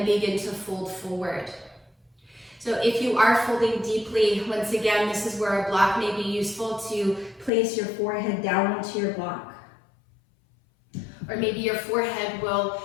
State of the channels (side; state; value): right; drops out; at 7.5 s